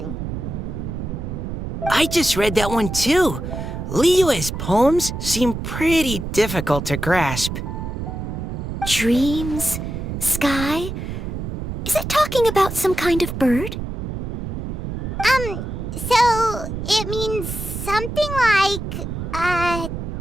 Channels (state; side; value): noise; right; rumble, 5 dB below the sound